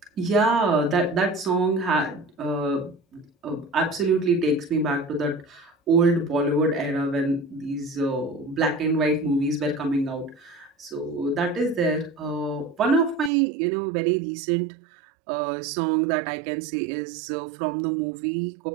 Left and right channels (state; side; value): drops out; left; at 13.3 s